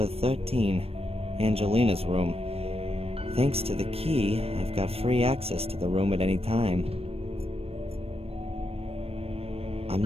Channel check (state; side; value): late; left; 0.28 ms